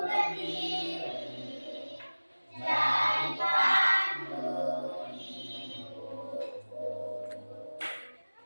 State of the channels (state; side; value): inverted; both; correlation -1.00